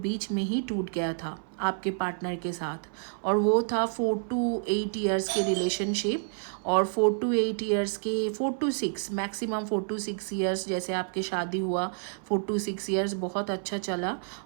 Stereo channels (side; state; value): left; silent; 57 dB below the other